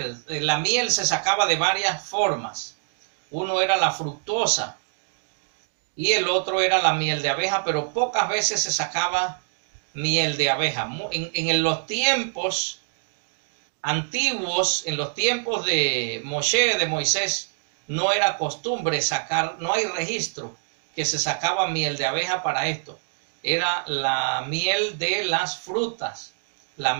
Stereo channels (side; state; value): left; silent; digital silence